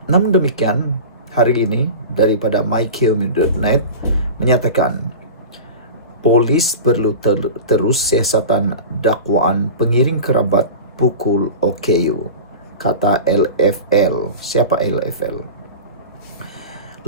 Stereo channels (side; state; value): both; inverted; correlation -0.31